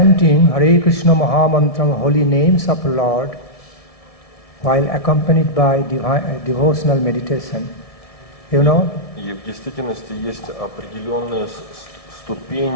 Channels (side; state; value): right; late; 1.7 ms